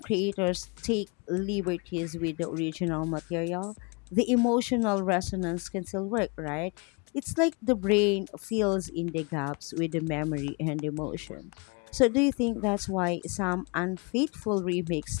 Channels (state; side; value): quieter; right; 31.6 dB